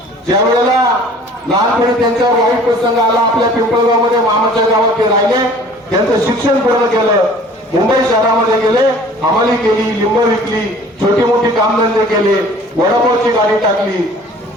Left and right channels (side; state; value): both; normal; correlation 0.49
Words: ज्या वेळेला लहानपणी त्यांच्यावर वाईट प्रसंग आला आपल्या पिंपळगावमध्ये, मामाच्या गावात ते राहिले, त्यांचं शिक्षण पूर्ण केलं, मुंबई शहरामध्ये गेले, हमाली केली, लिंब विकली, छोटी मोठी कामधंदे केले, वडापावची गाडी टाकली,